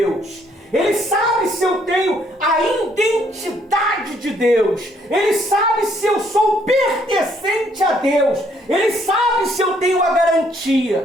Ele sabe se eu tenho a identidade de Deus. Ele sabe se eu sou pertencente a Deus. Ele sabe se eu tenho a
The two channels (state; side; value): normal; both; correlation 0.67